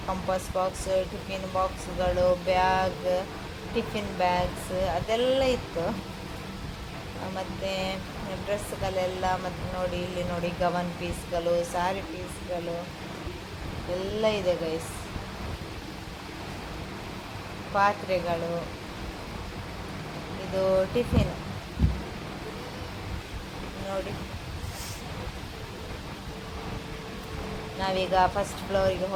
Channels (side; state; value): both; identical; correlation 1.00